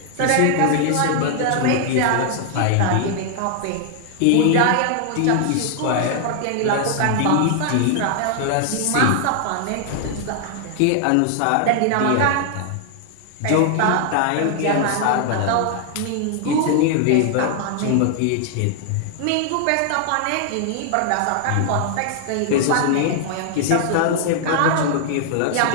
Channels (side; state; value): both; different; correlation 0.00